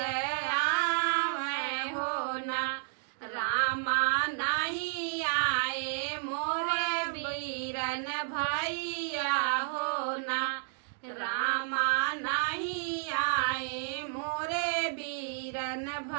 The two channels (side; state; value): left; silent; digital silence